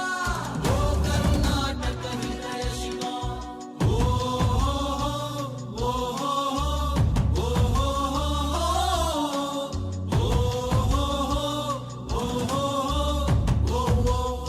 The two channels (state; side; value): identical; both; correlation 1.00